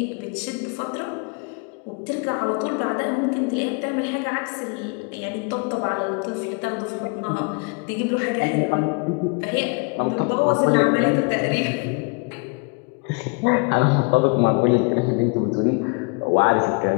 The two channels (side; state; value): right; quieter; 32.5 dB